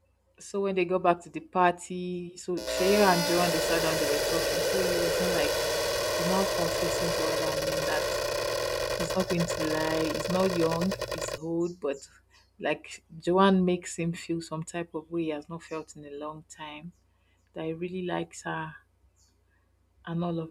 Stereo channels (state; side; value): identical; both; correlation 1.00